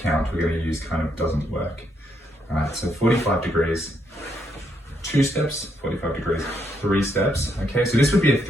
count we're going to use kind of doesn't work. Alright, so 45 degrees, 2 steps, 45 degrees, 3 steps. Okay, so this would be a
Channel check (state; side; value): normal; both; correlation 0.76